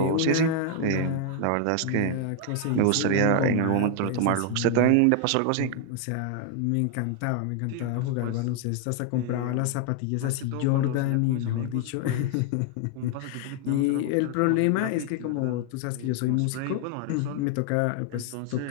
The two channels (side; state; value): both; different; correlation 0.00